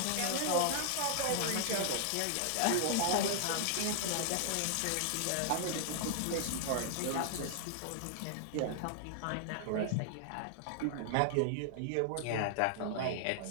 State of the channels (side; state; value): both; different; correlation -0.01